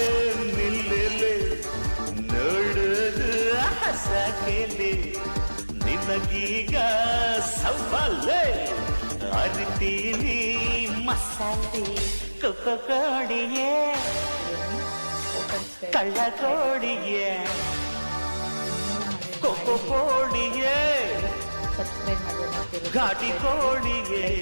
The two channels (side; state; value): both; inverted; correlation -1.00